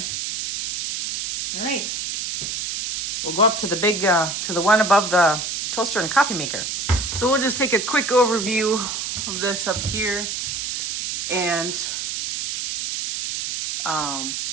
All right. We'll go up to the big, to the one above the toaster and coffee maker. So we'll just take a quick overview of this up here, and then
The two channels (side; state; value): right; noise; hiss, 3 dB below the sound